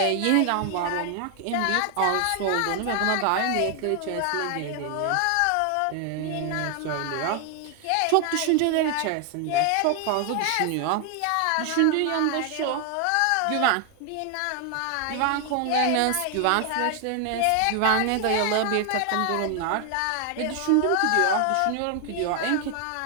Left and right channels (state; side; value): different; both; correlation 0.00